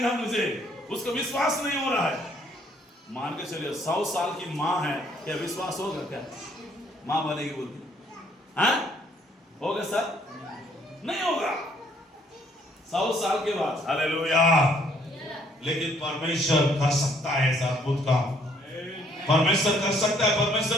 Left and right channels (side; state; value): both; normal; correlation 0.65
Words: मुझे। उसका विश्वास नहीं हो रहा है। मान के चलिए 100 साल की मां है, क्या विश्वास होगा? क्या मां बनेगी बोलती? हाँ होगा सर? नहीं होगा 100 साल के बाद। हालेलुया। लेकिन परमेश्वर कर सकता है ऐसा अद्भुत काम। परमेश्वर कर सकता है,